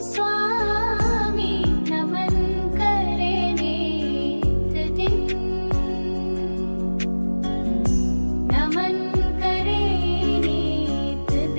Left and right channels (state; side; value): inverted; both; correlation -1.00